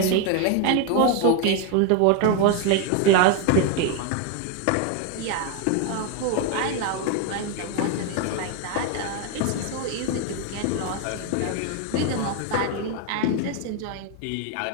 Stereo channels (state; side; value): different; both; correlation 0.01